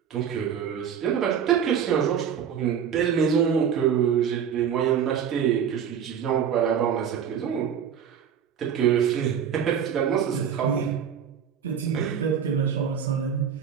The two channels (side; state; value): left; quieter; 8.0 dB